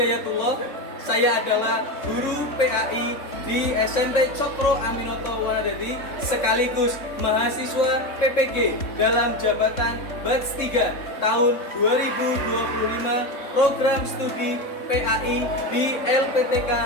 Saya adalah guru PAI di SMP Cokro Aminoto Wanadadi sekaligus mahasiswa PPG dalam jabatan Batch 3 tahun 2025 program studi PAI di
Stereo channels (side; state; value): right; late; 3.6 ms